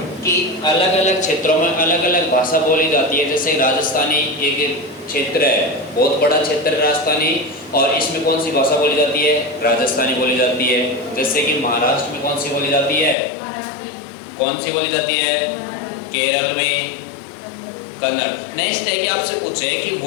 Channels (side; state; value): right; drops out; at 13.2 s